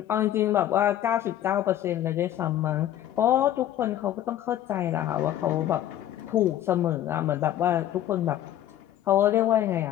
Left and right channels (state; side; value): quieter; right; 12.1 dB